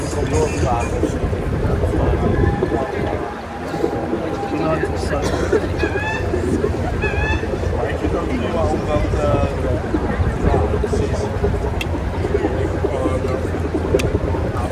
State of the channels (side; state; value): both; identical; correlation 1.00